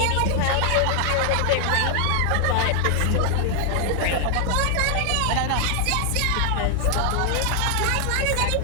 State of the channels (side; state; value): both; different; correlation 0.00